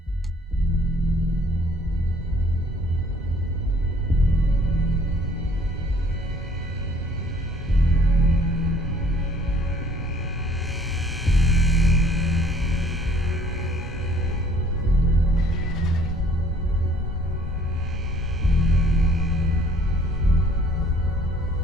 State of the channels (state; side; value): normal; both; correlation 0.58